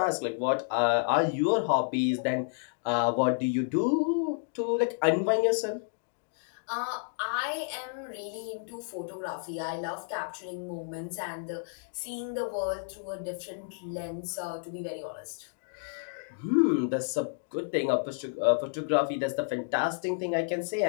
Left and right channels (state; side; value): silent; right; digital silence